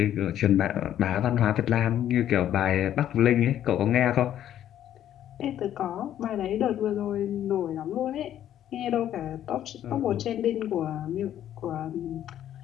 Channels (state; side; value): quieter; right; 11.2 dB